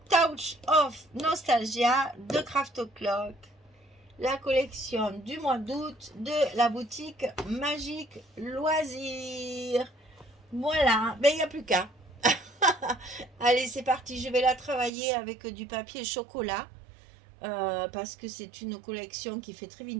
Touch of Nostalgia de Craft O'Clock. La collection du mois d'août de la boutique Magique Loisirs. Voilà, ben il n'y a plus qu'à. Allez, c'est parti, je vais la travailler avec du papier chocolat. Parce que c'est une collection qui fait très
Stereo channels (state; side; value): drops out; left; at 14.9 s